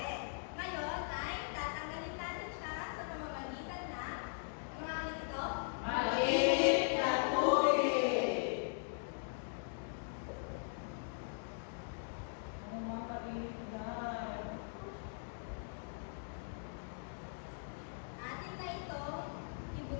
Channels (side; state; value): right; silent; digital silence